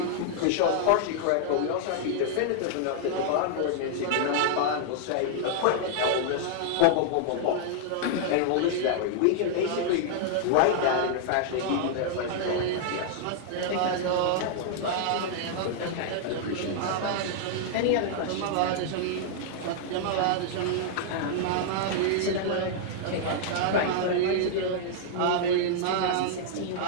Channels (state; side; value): different; both; correlation -0.01